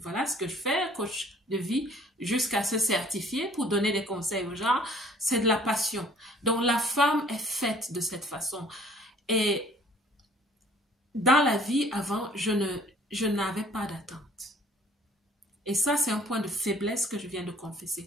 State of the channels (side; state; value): both; normal; correlation 0.55